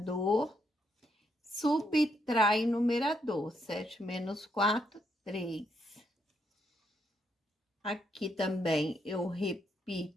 subtrai o numerador. 7 menos 4, 3. Aqui também eu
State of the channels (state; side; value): normal; both; correlation 0.76